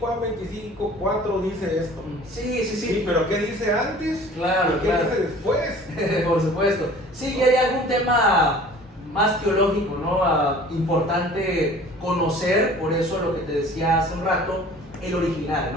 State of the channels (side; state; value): both; normal; correlation 0.47